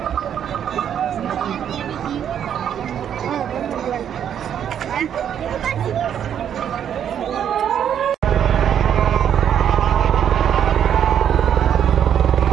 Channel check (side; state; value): left; quieter; 9.2 dB